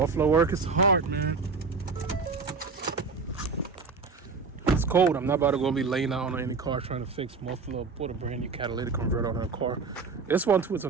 work is hard, man. It's cold. I'm not about to go be laying out on any car trying to fix muffler, put a brand new catalytic converter on a car. This one too is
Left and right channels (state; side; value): quieter; left; 4.6 dB